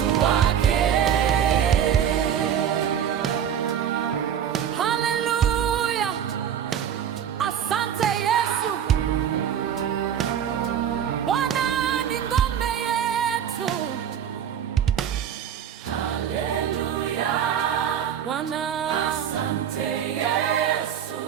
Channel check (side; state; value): left; quieter; 9.0 dB